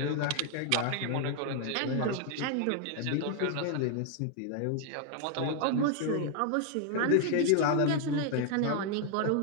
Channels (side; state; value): both; different; correlation 0.00